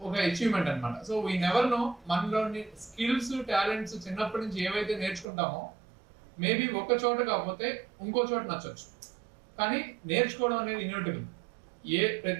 ఒక అచీవ్మెంట్ అనమాట. సో వీ నెవర్ నో మనలోని స్కిల్స్, టాలెంట్స్ చిన్నప్పటి నుంచి ఏవైతే నేర్చుకుంటామో మేబీ ఒక చోట కాకపోతే ఇంకో చోట నచ్చొచ్చు, కానీ నేర్చుకోవడం అనేది ఇన్యూటబుల్.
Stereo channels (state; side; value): drops out; left; at 5.2 s